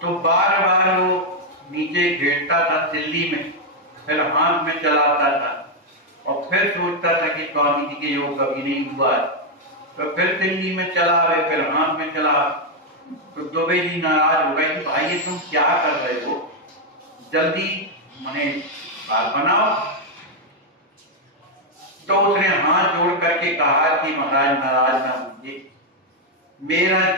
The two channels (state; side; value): normal; both; correlation 0.01